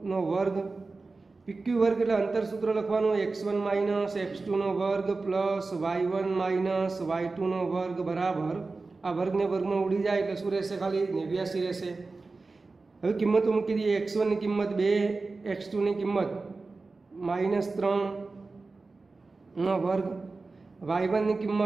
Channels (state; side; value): quieter; left; 3.8 dB